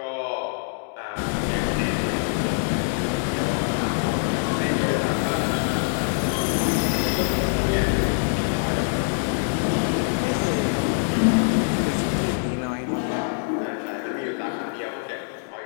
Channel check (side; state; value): right; silent; 62 dB below the other